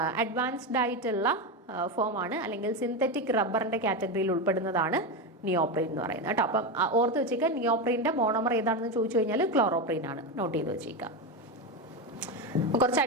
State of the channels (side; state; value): both; normal; correlation 0.14